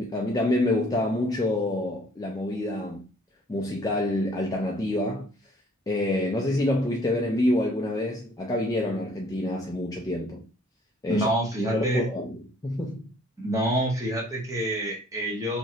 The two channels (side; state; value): both; normal; correlation 0.58